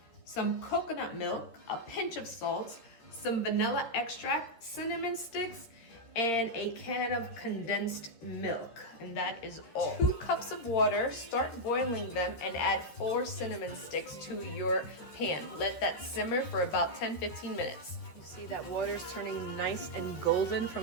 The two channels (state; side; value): late; right; 13 ms